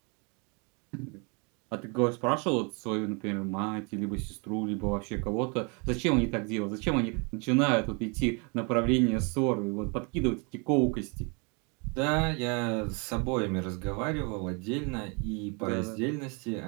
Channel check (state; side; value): quieter; left; 33.0 dB